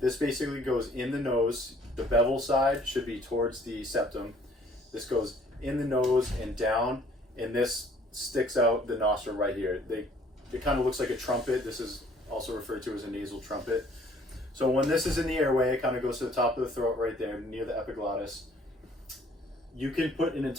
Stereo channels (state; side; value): normal; both; correlation 0.58